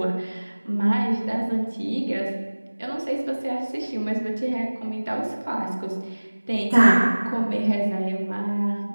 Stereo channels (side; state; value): both; inverted; correlation -1.00